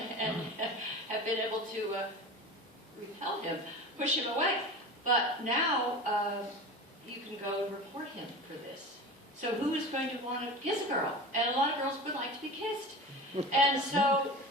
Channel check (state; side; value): normal; both; correlation 0.32